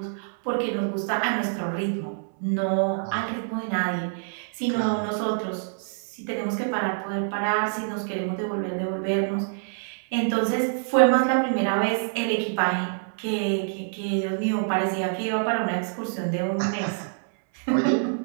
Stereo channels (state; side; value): silent; left; 61 dB below the other